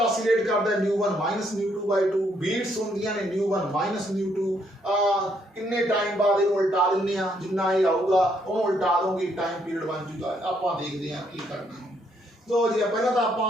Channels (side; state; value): both; normal; correlation 0.72